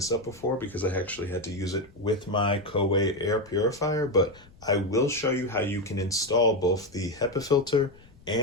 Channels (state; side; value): noise; left; rumble, 25 dB below the sound